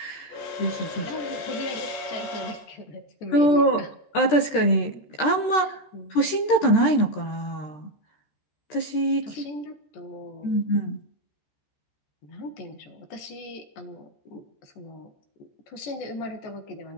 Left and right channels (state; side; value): late; right; 13 ms